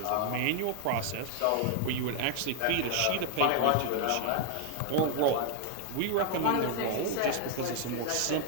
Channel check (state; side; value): different; both; correlation 0.00